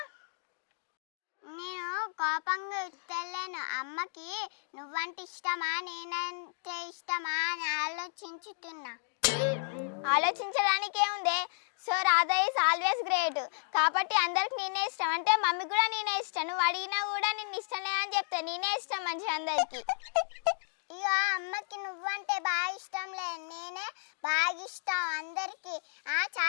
నేను కోపంగా ఇస్తలేను. అమ్మకి నువ్వంటే ఇష్టమా నేనంటే ఇష్టమా అని ఆలోచించుతున్నా. ఆలోచించడానికి ఏముంది? So Radha is always great. కాబట్టి అందరికి నేనే ఇష్టం అంటే మమ్మీకి కూడా నేనే ఇష్టం. నువ్వు అడిగినా కూడా నేను ఇష్టం లేదని చెప్తా. నేనే ఇష్టం మంచిగా అందరికి. ఇక అమ్మకి నువ్వంటే బాగా ఇష్టం లేదు, నేనే బాగా ఇష్టం అందరికి.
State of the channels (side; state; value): right; silent; digital silence